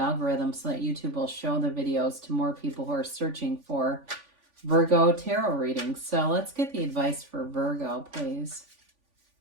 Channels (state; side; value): late; left; 3.5 ms